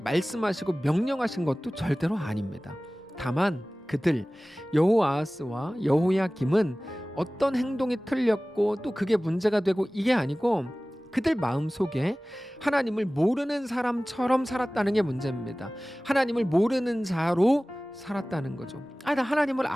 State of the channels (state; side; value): normal; both; correlation 0.98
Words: 명령하신 것도 절대로 아닙니다. 다만 그들 여호아하스와 여호야김은 어떤 행동이 틀렸고 또 그게 문제가 되고 이게 아니고 그들 마음속에 하나님을 모르는 사람처럼 살았다는 게 문제입니다. 하나님을 모르는 자로 살았다는 거죠. 나 하나님을